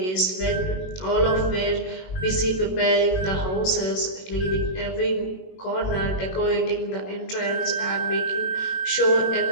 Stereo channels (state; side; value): late; right; 21 ms